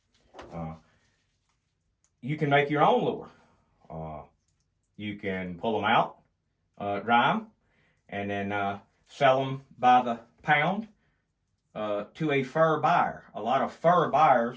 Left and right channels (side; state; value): both; identical; correlation 1.00